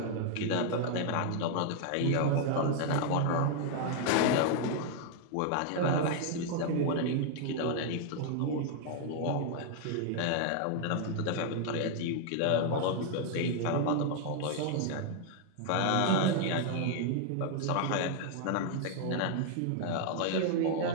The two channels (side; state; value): both; different; correlation 0.00